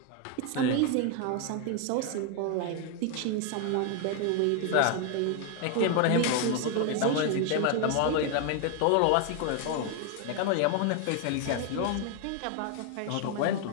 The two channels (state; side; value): different; both; correlation 0.01